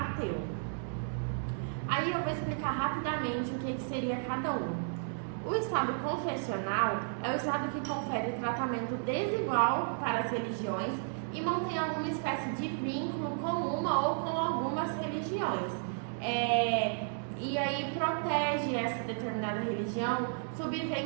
Aí eu vou explicar rapidamente o que seria cada um. O estado confessional é o estado que confere tratamento desigual para as religiões e mantém alguma espécie de vínculo com uma ou com algumas religiões. E aí protege essa determinada religião,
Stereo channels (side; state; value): left; silent; digital silence